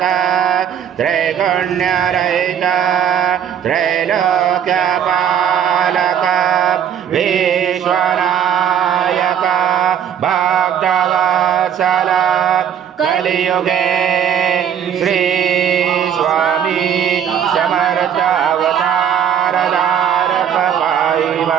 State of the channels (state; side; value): quieter; left; 8.9 dB